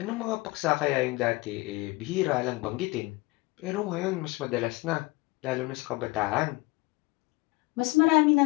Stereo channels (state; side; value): quieter; right; 23.3 dB